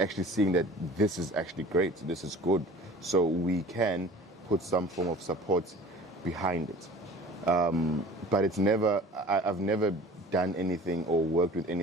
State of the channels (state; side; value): normal; both; correlation 0.44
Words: seeing that this is actually great, this is good, so we can put some form of support behind it. But it's never, I've never done anything or worked with